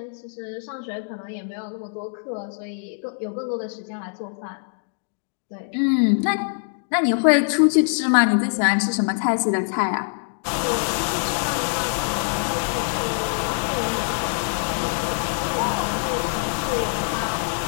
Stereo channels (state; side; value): silent; right; digital silence